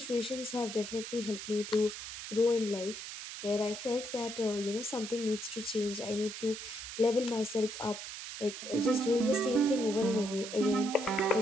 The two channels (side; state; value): right; noise; hiss, 9 dB below the sound